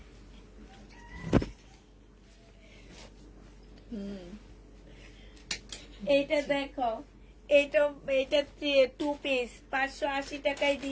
এইটা দেখো, এইটা 2 পিস 580 টাকায়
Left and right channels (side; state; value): both; identical; correlation 1.00